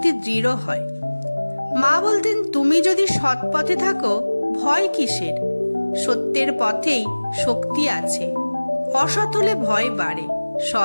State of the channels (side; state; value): both; inverted; correlation -1.00